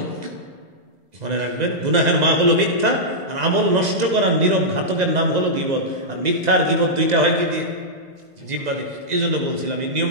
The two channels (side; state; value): left; late; 2.0 ms